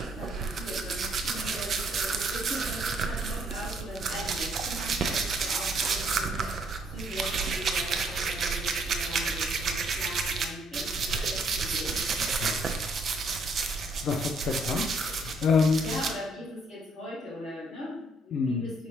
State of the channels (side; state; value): both; normal; correlation 0.67